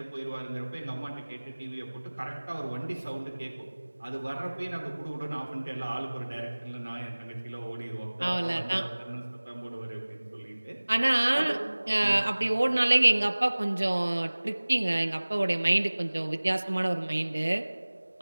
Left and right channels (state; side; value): inverted; both; correlation -1.00